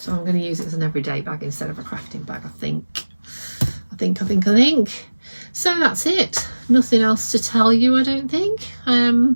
I'm going to use it as an everyday bag instead of a crafting bag, I think. So that's it. Nothing else to tell you, I don't think.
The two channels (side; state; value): both; inverted; correlation -1.00